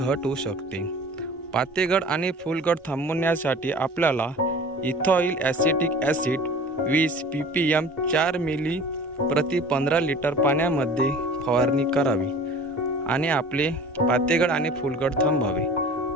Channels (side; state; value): both; normal; correlation 0.43